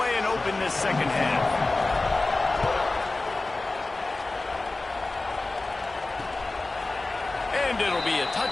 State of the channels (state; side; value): quieter; right; 3.2 dB